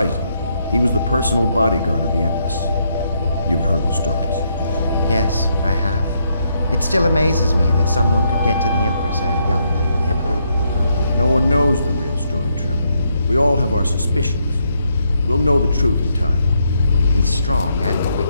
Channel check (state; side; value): inverted; both; correlation -0.76